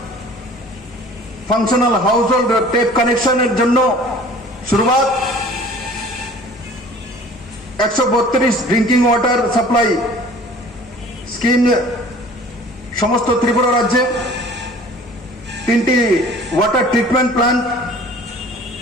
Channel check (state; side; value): normal; both; correlation 0.48